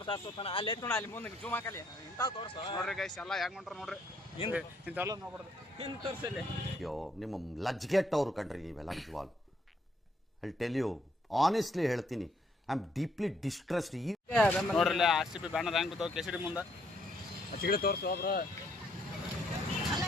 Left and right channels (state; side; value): normal; both; correlation 0.70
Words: ಅಲ್ಲಿ ನೋಡ, ಅಲ್ಲಿ ಮುಂದೆ ಜೂಮ್ ಹಾಕಲಿ ಇಂಥ ತೋರ್ಸ. ನೋಡ್ರಿ ಗೈಸ್, ಎಲ್ಲ ಹೆಂಗ್ ಹೊಂಟ್ರ ನೋಡ್ರಿ. ಇಂಥವೆಲ್ಲ ನೋಡ್ಬಾರ್ದು. ಹಿಂದ್ ತೋರ್ಸಲ್ಲಿ. ಅಯ್ಯೋ, ನಿಮ್ಮ ಲಜ್ಗೆಟ್ಟವ್ರು ಕಣ್ರಿ ನೀವೆಲ್ಲ ನಿಜವಾಗ್ಲು. ಐ ಟೆಲ್ ಯು ಆನೆಸ್ಟ್ಲಿ ಹೇಳ್ತೀನಿ, ಐ ಆಮ್ ಡೀಪ್ಲಿ ಡಿಸ್ಟ್ರೆಸ್ಡ್. ನೋಡ್ರಿ ಆರ್ ಸಿ ಬಿ ಬ್ಯಾನರ್ ಹೆಂಗ್ ಬಿದ್ದಾವ KCD ಮುಂದೆ. ಚಿಗಡೆ ತೋರ್ಸು ಬ್ರೋ.